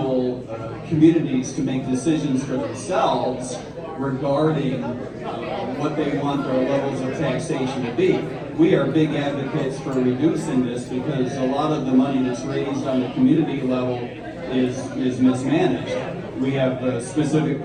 communities to make decisions for themselves regarding what they want their levels of taxation to be. We are big advocates for reducing this because a lot of the money that's raised on the community level is mismanaged. We have specific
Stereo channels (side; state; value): both; identical; correlation 1.00